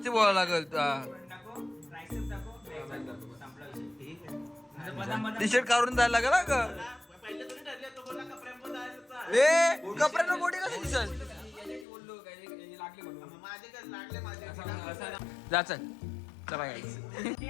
बोलायला लागल. टी शर्ट काढून जायला लागेल ना ग. ए कपड्यांना मोठी कसं दिसत. जा चल चला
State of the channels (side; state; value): right; drops out; at 11.9 s